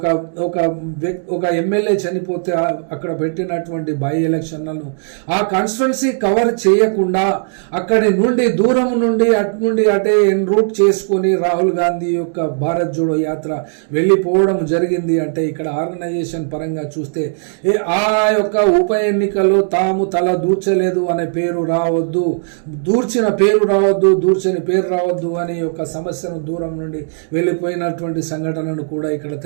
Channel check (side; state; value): left; silent; digital silence